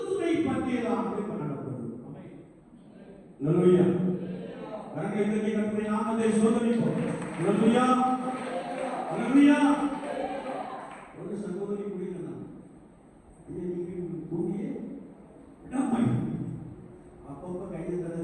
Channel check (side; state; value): both; identical; correlation 1.00